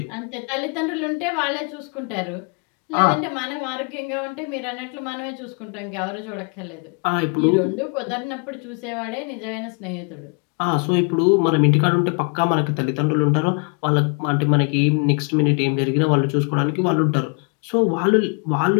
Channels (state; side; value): quieter; right; 37.5 dB